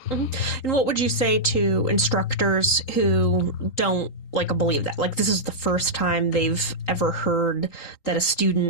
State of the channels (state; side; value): late; right; 3.8 ms